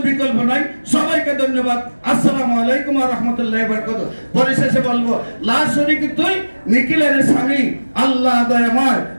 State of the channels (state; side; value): inverted; both; correlation -1.00